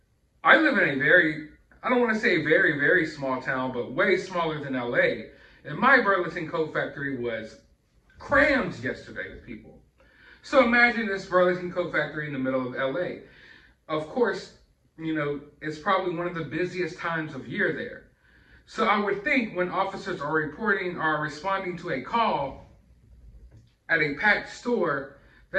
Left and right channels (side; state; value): both; identical; correlation 1.00